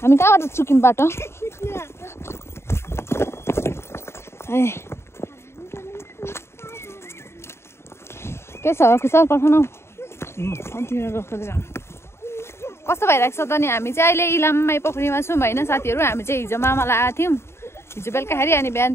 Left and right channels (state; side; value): late; right; 0.12 ms